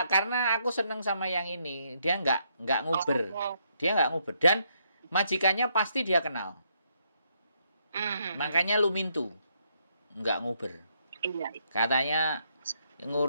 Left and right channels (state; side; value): inverted; both; correlation -0.75